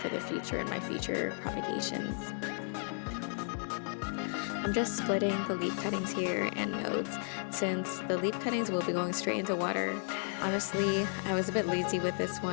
the future in my future propagations. I'm just splitting the leaf cuttings here and nodes, since the leaf cuttings will be going straight into water. Honestly, I was a bit lazy with this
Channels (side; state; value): right; silent; 55 dB below the other